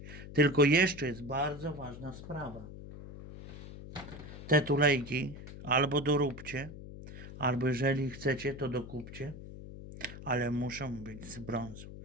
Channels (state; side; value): noise; left; hum, 13 dB below the sound